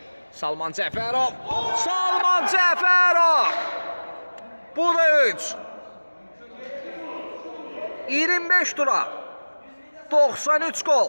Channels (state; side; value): inverted; both; correlation -1.00